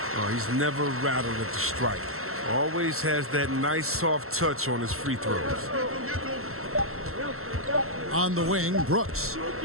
Oh, he's never rattled at the strike. Always has that nice soft touch on his free throws. On the wing, Brooks.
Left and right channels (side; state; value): left; late; 0.62 ms